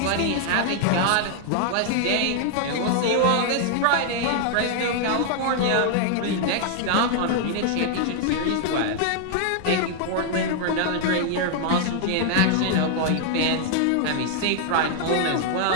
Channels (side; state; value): both; different; correlation 0.00